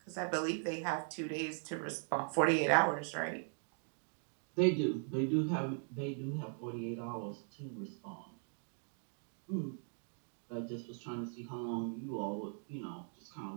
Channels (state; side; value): silent; left; 51 dB below the other